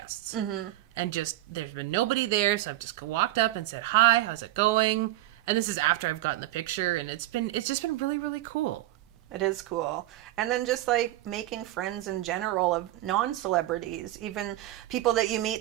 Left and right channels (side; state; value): left; quieter; 15.8 dB